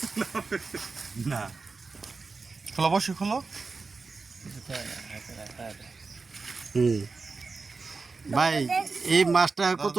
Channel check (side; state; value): left; quieter; 4.3 dB